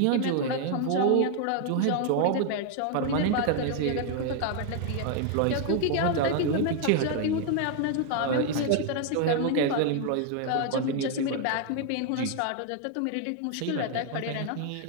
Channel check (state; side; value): different; both; correlation 0.00